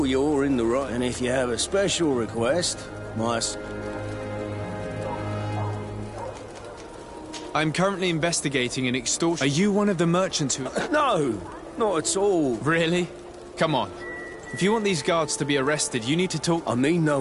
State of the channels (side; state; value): both; identical; correlation 1.00